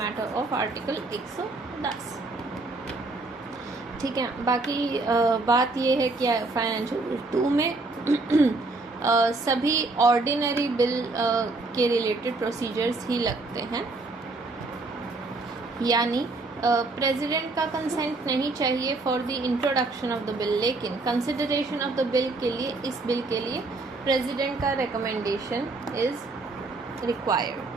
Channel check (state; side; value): quieter; left; 3.3 dB